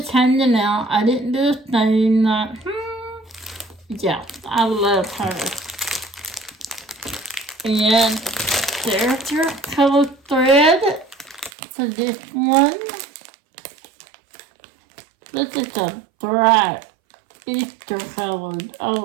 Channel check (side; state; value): left; drops out; at 11.5 s